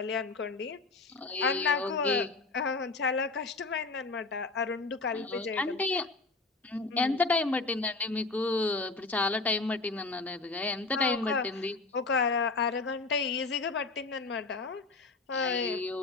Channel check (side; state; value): right; quieter; 3.7 dB